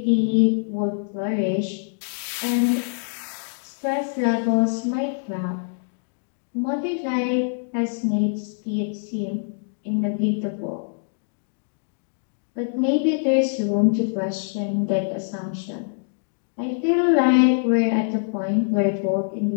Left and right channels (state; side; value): silent; right; digital silence